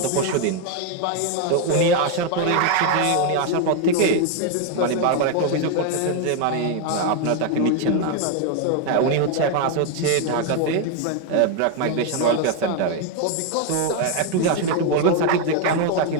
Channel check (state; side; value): different; both; correlation 0.01